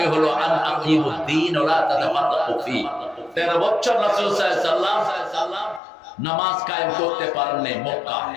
হলো আন আকিমুদ্দিন ওয়া লা তাতাফাররাকু ফি। 13 বছর রাসূল সাল্লাল্লাহু আলাইহি ওয়াসাল্লাম নামাজ কায়েম করতে পারেননি মক্কা।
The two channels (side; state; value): right; drops out; at 5.8 s